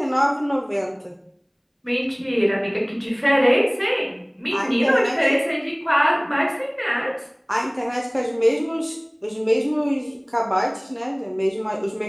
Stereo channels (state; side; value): identical; both; correlation 1.00